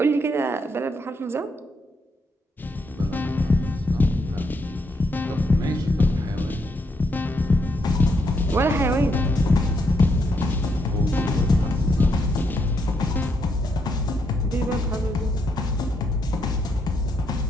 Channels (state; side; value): normal; both; correlation 0.77